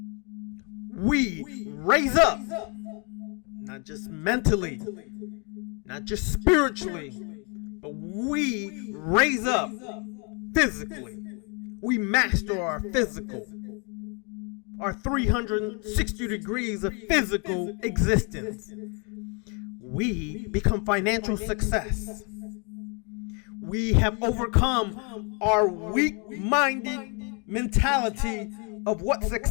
we raise up, not just mentally, not just spiritually, but we raise up physically. We master our physical, our 360 degrees of physical existence. We become financial success. We have overcome our weak-minded mentality of what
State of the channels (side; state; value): right; quieter; 34.3 dB